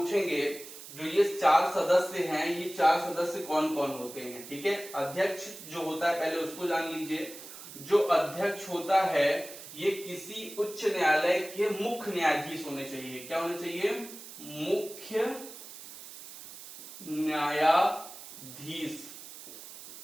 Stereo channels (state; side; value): noise; right; hiss, 14 dB below the sound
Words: जो ये 4 सदस्य हैं, ये 4 सदस्य कौन कौन होते हैं। ठीक है, अध्यक्ष जो होता है पहले उसको जान लीजिए। जो अध्यक्ष होता है ये किसी उच्च न्यायालय के मुख्य न्यायाधीश होने चाहिए। क्या होने चाहिए, मुख्य न्यायाधीश।